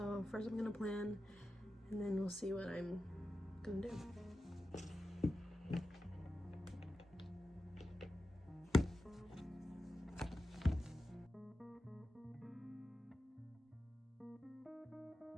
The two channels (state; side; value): normal; both; correlation 0.91